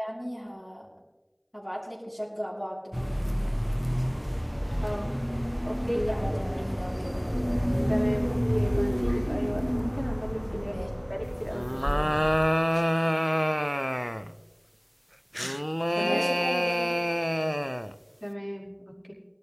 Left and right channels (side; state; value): both; identical; correlation 1.00